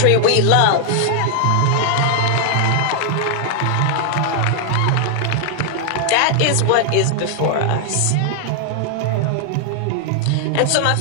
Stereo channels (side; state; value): both; different; correlation -0.01